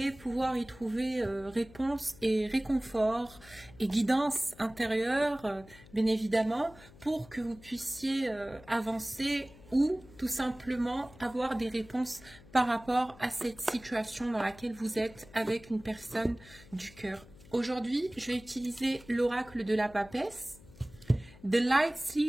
pouvoir y trouver réponse et réconfort et guidance intérieure, bien évidemment, pour que vous puissiez avancer ou tout simplement avoir des réponses par rapport à cette situation dans laquelle vous êtes avec une personne du cœur. Aujourd'hui, je vais utiliser l'oracle de la papesse, The Light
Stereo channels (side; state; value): left; noise; hum, 22 dB below the sound